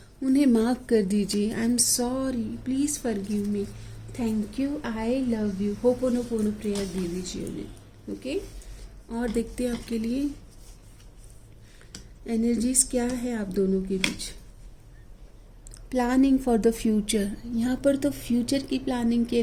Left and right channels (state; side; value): identical; both; correlation 1.00